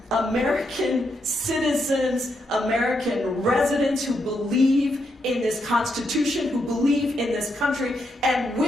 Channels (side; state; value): both; normal; correlation 0.80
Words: American citizens, American residents who believe in this Constitution, who believe in this country, and